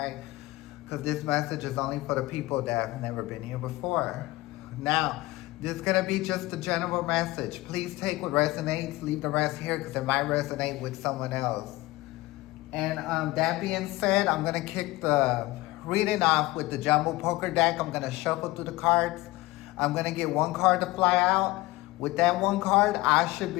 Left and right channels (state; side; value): quieter; right; 19.7 dB